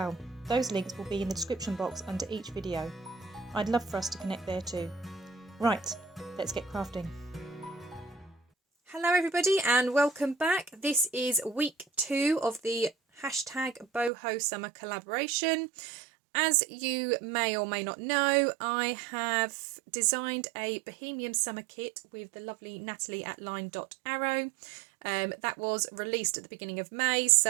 Those links will be in the description box under each video. I'd love for us to connect there too. Right, let's get crafting. Hello everybody and welcome back. This is week 2 of the #boho summer collaboration. As you may or may not know, I have designed a Bohemian summer kit with the lovely Nathalie at LineDotArrow. That was released at the beginning of May,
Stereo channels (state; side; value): drops out; left; at 14.1 s